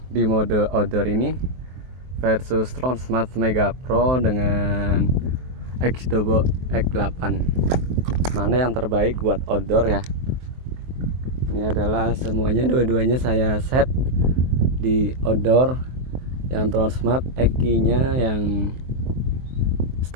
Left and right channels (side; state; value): left; late; 23 ms